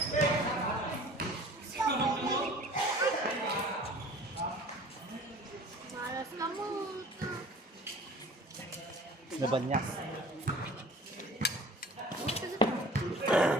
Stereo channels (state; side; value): normal; both; correlation 0.45